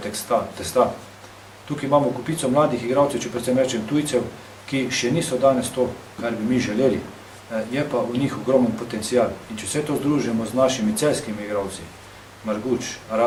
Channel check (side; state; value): both; identical; correlation 1.00